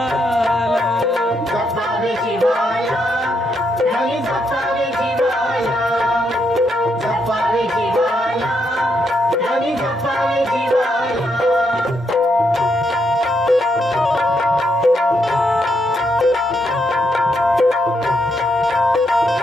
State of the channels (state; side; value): normal; both; correlation 0.78